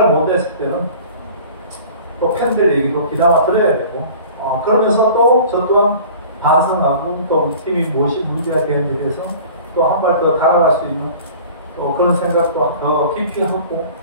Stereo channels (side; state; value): both; inverted; correlation -0.43